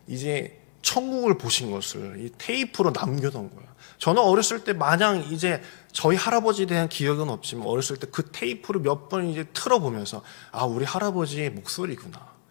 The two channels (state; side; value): silent; right; digital silence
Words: 이제 천국을 보신 것을 이 테이프로 남겨놓은 거예요. 저는 어렸을 때 마냥 이제 저희 할아버지에 대한 기억은 없지만 어렸을 때 그 테이프를 몇 번 이제 틀어보면서 아, 우리 할아버지의 목소리구나.